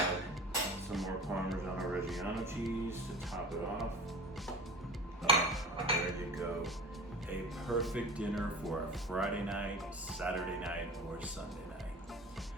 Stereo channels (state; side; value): normal; both; correlation 0.36